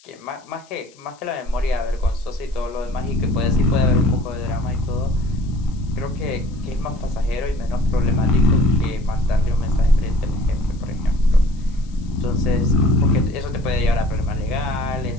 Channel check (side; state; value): left; noise; hiss, 28 dB below the sound